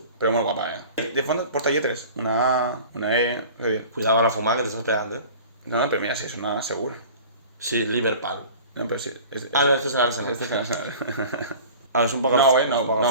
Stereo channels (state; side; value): inverted; both; correlation -0.41